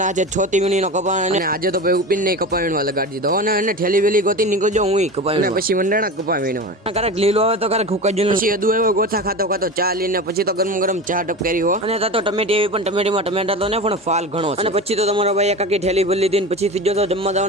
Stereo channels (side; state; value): both; normal; correlation 0.28